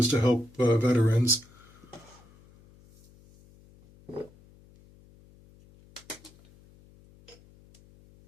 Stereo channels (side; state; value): left; noise; hum, 26 dB below the sound